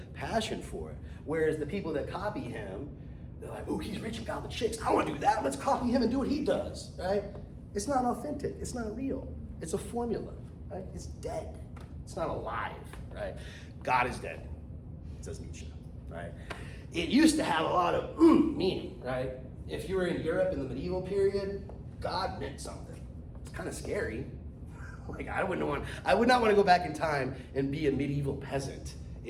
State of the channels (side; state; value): both; identical; correlation 1.00